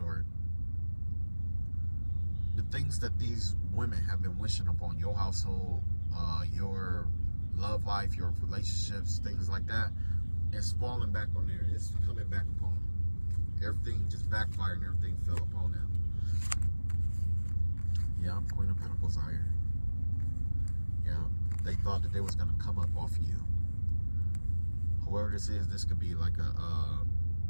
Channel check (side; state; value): both; inverted; correlation -1.00